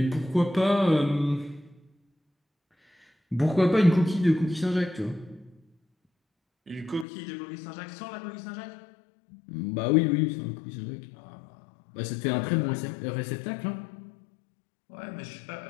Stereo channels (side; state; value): right; drops out; at 7.1 s